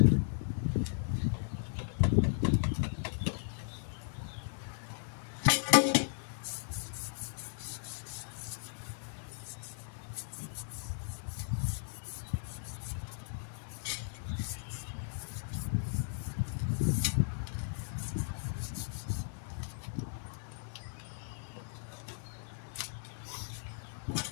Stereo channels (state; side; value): silent; right; 53 dB below the other